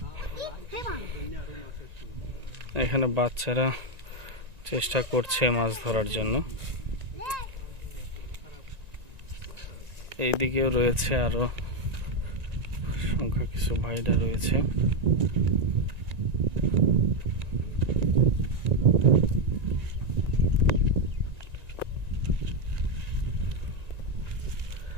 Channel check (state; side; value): late; left; 1.9 ms